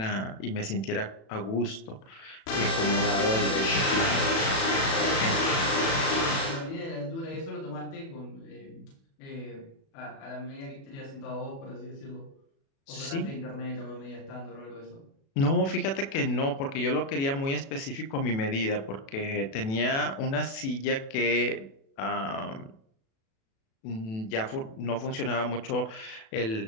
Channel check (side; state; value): right; late; 36 ms